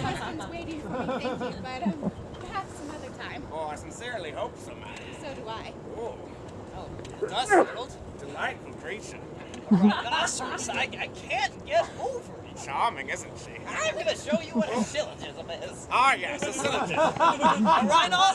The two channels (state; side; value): identical; both; correlation 1.00